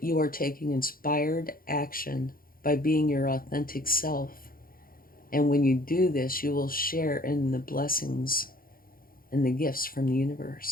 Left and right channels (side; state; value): right; late; 0.42 ms